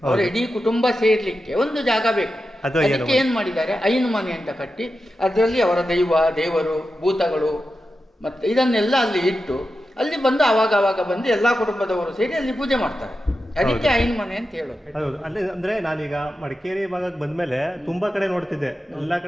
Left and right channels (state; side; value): normal; both; correlation 0.91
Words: ಅವರ ಇಡೀ ಕುಟುಂಬ ಸೇರ್ಲಿಕ್ಕೆ ಒಂದು ಜಾಗ ಬೇಕು. ಅದಕ್ಕೆ ಏನ್ ಮಾಡಿದ್ದಾರೆ, ಐನು ಮನೆ ಅಂತ ಕಟ್ಟಿ ಅದರಲ್ಲಿ ಅವರ ದೇವರು, ಭೂತಗಳು ಮತ್ತೆ ಇದನ್ನೆಲ್ಲ ಅಲ್ಲಿ ಇಟ್ಟು ಅಲ್ಲಿ ಬಂದು ಆವಾಗ ಬಂದು ಎಲ್ಲಾ ಕುಟುಂಬದವರು ಸೇರಿ ಅಲ್ಲಿ ಪೂಜೆ ಮಾಡ್ತಾರೆ. ಅದಕ್ಕೆ ಐನು ಮನೆ ಅಂತ ಹೇಳೋದು. ಹೌದು. ಅಲ್ಲಿ ಅಂದ್ರೆ ನಾನೀಗ ಮಡಿಕೇರಿ ಭಾಗಕ್ಕೆ ಬಂದ್ಮೇಲೆ ತುಂಬಾ ಕಡೆ ನೋಡ್ತಿದ್ದೆ, ಎಲ್ಲಾ